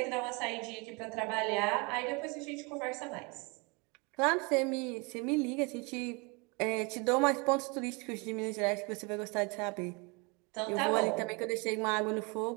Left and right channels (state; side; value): quieter; left; 29.4 dB